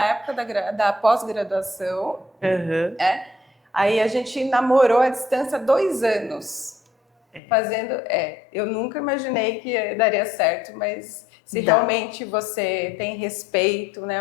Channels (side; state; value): right; drops out; at 7.4 s